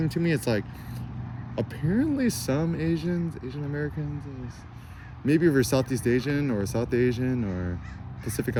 to me. It's like apparently some Asian Americans, maybe if you're Southeast Asian or South Asian or Pacific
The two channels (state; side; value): identical; both; correlation 1.00